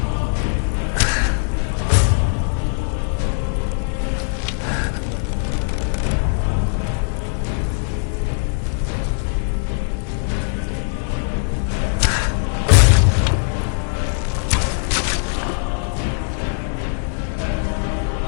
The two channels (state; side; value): silent; right; 65 dB below the other